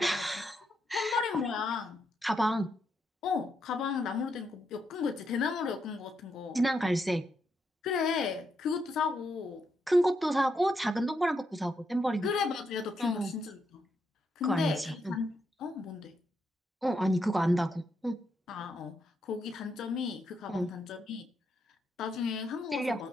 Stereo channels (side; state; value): both; normal; correlation 0.80